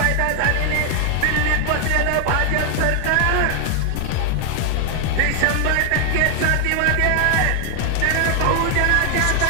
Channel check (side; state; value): both; different; correlation 0.00